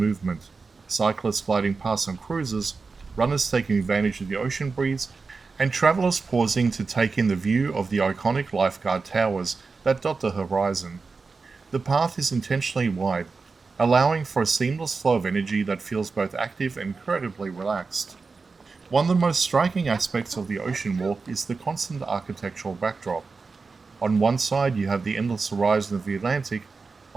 cyclists gliding past on cruises, runners taking advantage of the ocean breeze, and travelers pausing to take in the view of the iconic lifeguard towers that dot the horizon. The path is intentionally wide, allowing for a seamless flow of energy that feels both active and incredibly relaxed. One of the most striking aspects of the Ocean Walk is the constant architectural backdrop. On one side you have the endless horizon of the Atlantic,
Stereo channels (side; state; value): left; quieter; 4.4 dB